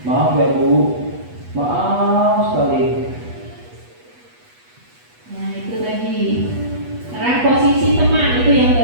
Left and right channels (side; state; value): left; late; 8.2 ms